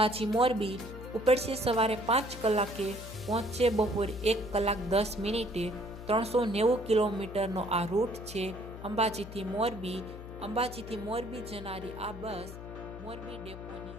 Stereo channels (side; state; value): left; noise; hum, 12 dB below the sound